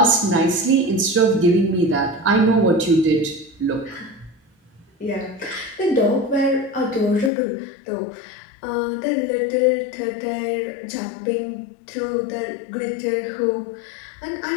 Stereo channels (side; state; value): right; drops out; at 7.3 s